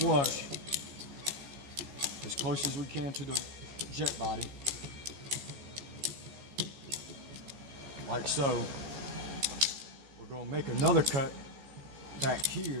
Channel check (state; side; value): late; left; 14 ms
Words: as close as we can to the jet body, like so. We're going to make another cut back